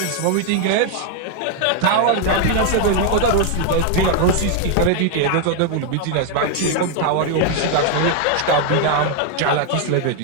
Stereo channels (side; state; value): both; different; correlation 0.01